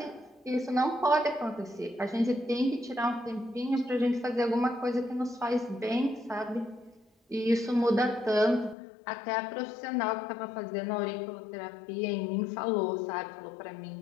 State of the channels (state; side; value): drops out; right; at 8.8 s